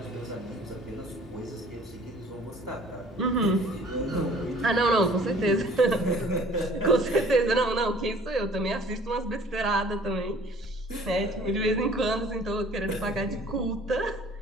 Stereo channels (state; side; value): normal; both; correlation 0.52